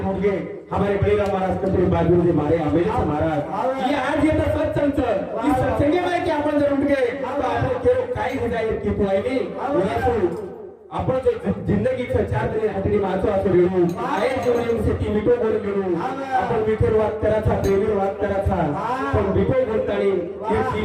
मुलगे हमारे बळीराम महाराज कपडे बाजू जे मारे आंबेडकर महाराज ये आज येतं सत्संग इस सत्संगे में कि आपण जर उठ गए तो आपण केवळ काही हो जाईल की पुआईने आपण जो जिंदगी चार जणे हातडी मारतो असं वेळू आहे जीवनासाठी मिठो बोल मिळू आपण मिठोर वाद करायचा प्रेमीर वाद करायचा पण मिठो बोलतानी हे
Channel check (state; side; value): identical; both; correlation 1.00